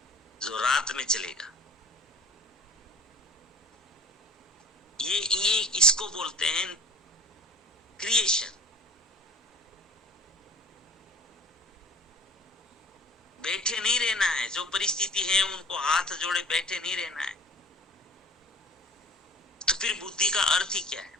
जो रात में चलेगा। ये इसको बोलते हैं क्रिएशन। बैठे नहीं रहना है, जो परिस्थिति है उनको हाथ जोड़े बैठे नहीं रहना है। तो फिर बुद्धि का अर्थ ही क्या है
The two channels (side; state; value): both; normal; correlation 0.47